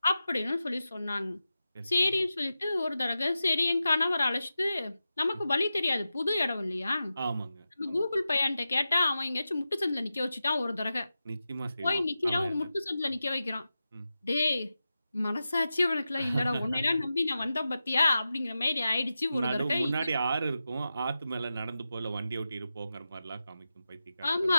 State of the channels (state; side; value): inverted; both; correlation -0.92